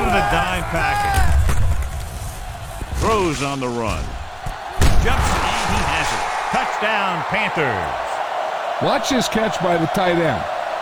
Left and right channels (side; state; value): both; identical; correlation 1.00